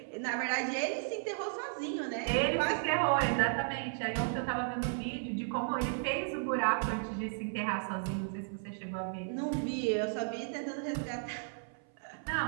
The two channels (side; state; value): left; silent; 55 dB below the other